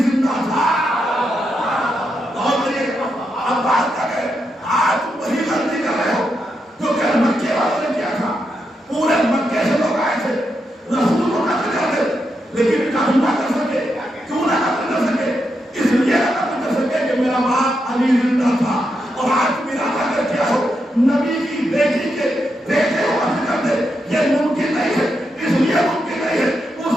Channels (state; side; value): normal; both; correlation 0.84